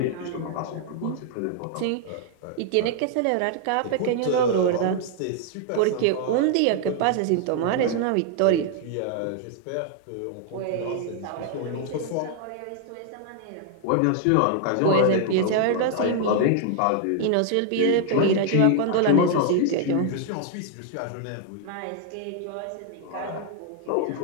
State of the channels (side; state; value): both; different; correlation 0.00